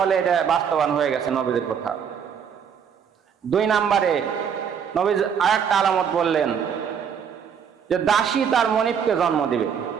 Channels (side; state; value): left; quieter; 7.5 dB